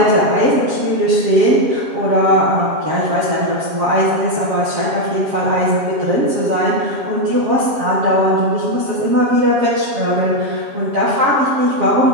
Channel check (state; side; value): late; left; 7.4 ms